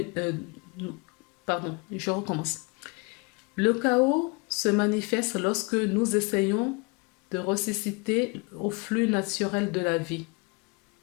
pardon, je recommence. Le chaos se manifeste lorsque nous essayons de ressusciter au flux naturel de la vie.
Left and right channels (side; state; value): right; quieter; 30.0 dB